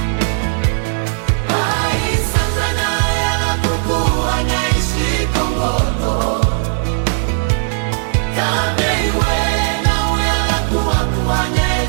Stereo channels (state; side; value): silent; left; digital silence